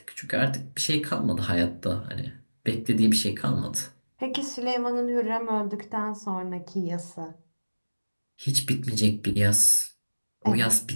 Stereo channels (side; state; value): both; inverted; correlation -1.00